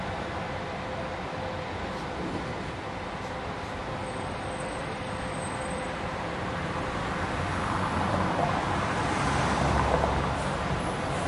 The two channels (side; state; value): both; identical; correlation 1.00